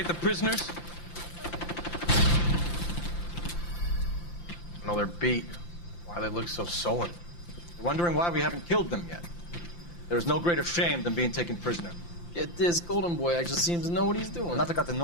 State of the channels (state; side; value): late; right; 5.8 ms